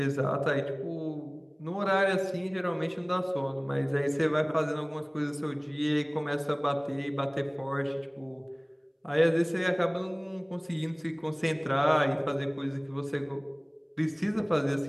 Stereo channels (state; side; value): identical; both; correlation 1.00